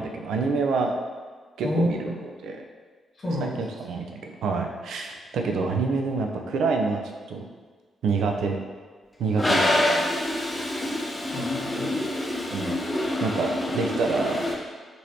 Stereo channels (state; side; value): normal; both; correlation 0.76